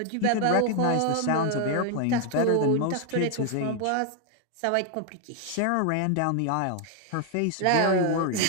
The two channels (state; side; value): different; both; correlation 0.00